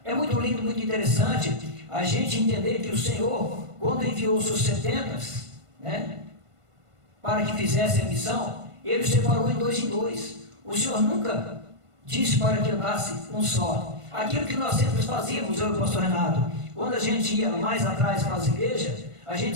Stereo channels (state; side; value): late; left; 1.5 ms